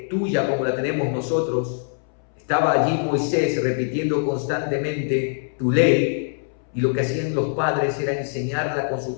tuya como la tenemos nosotros, estaba allí Moisés repitiendo constantemente tu ley, y lo que hacían los padres era enseñarla con sus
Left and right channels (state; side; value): silent; right; 63 dB below the other